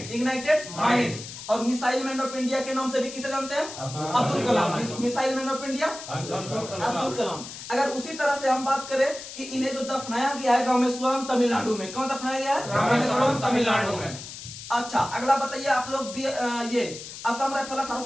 ignited mind. और मिसाइल मैन ऑफ इंडिया के नाम से भी किसे जानते हैं? Abdul Kalam. Missile man of India Abdul Kalam. अगर उसी तरह से हम बात करें कि इन्हें जो दफनाया गया है रामेश्वरम तमिलनाडु में, कौन दफनाया गया है? रामेश्वरम तमिलनाडु में। अच्छा, अगला बताइए आप लोग, ये असम राइफल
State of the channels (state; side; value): noise; left; hiss, 12 dB below the sound